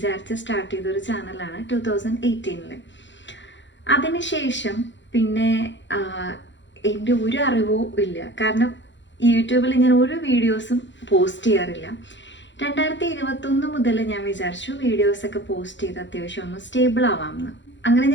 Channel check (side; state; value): right; late; 0.53 ms